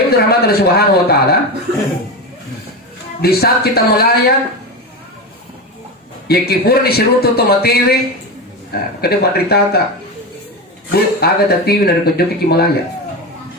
Ibu rahmat Allah Subhanahu wa taala, di saat kita melayat ya kipur di sirutu to materi, kada madritata bu aga tatiwi dari kejoki ki melayat.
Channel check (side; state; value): both; normal; correlation 0.19